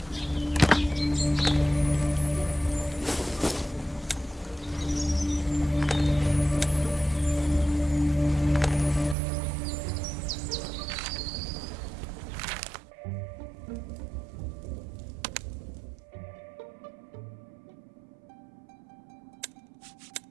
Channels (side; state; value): left; drops out; at 9.2 s